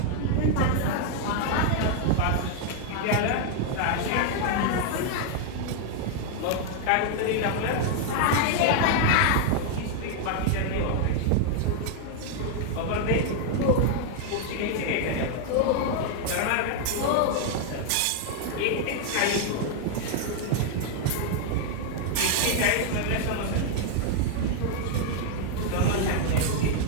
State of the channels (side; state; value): both; different; correlation 0.00